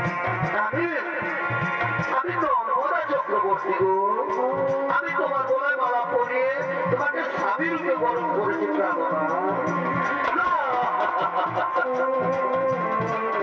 আমি তোমার গলায় মালা পরিয়ে তোমাকে স্বামী রূপে বরণ করেছি।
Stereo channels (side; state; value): both; identical; correlation 1.00